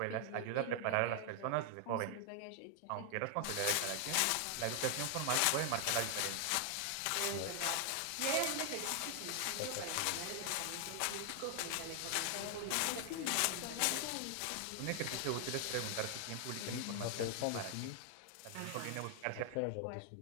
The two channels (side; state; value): both; different; correlation 0.00